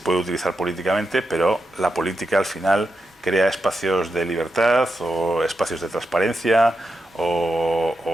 utilizar políticamente, pero la política al final crea espacios de libertad o espacios de transparencia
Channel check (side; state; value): both; normal; correlation 0.87